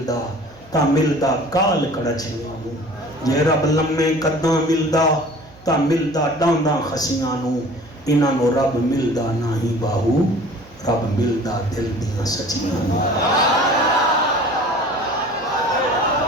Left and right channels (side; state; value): right; noise; hum, 25 dB below the sound